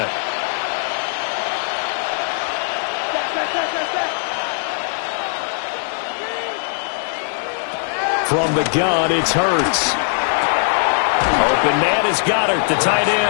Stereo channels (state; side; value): silent; right; digital silence